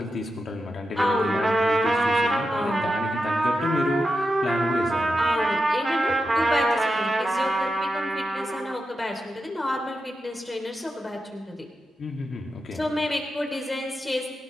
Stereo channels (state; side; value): normal; both; correlation 0.88